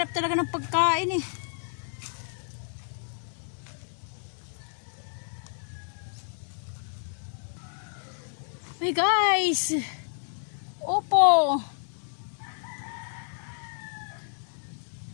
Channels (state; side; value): silent; right; 58 dB below the other